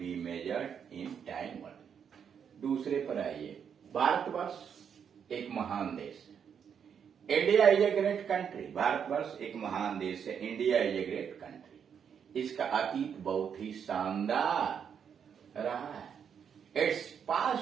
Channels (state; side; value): quieter; left; 7.6 dB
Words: measured in time only. दूसरे पर आइए, भारतवर्ष एक महान देश है। India is a great country, भारतवर्ष एक महान देश है। India is a great country. इसका अतीत बहुत ही शानदार रहा है। Its